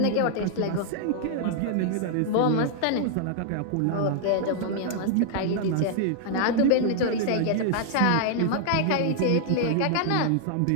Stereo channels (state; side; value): different; both; correlation -0.01